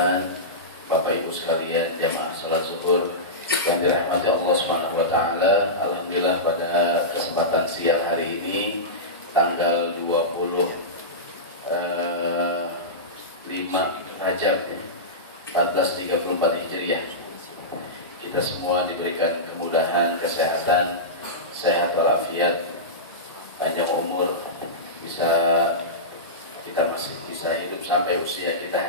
Bapak Ibu sekalian jamaah salat zuhur yang dirahmati Allah Subhanahu wa taala. Alhamdulillah pada kesempatan siang hari ini tanggal 25 Rajab 1434 Hijriah, kita semua diberikan kemudahan, kesehatan, sehat walafiat, panjang umur, kita masih bisa hidup sampai usia kita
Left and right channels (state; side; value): normal; both; correlation -0.16